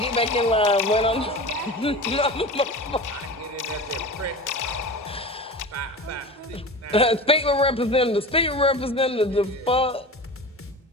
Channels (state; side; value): normal; both; correlation 0.32